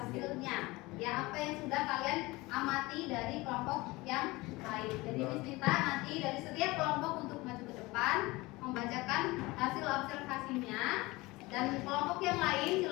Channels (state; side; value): quieter; right; 21.8 dB